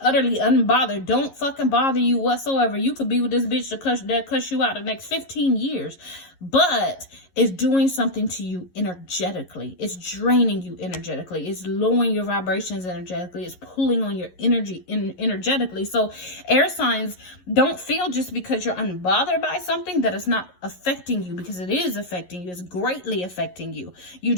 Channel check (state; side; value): late; right; 11 ms